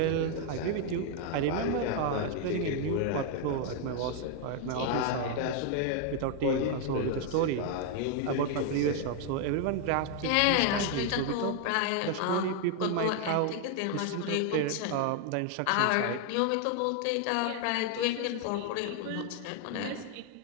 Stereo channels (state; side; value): different; both; correlation 0.00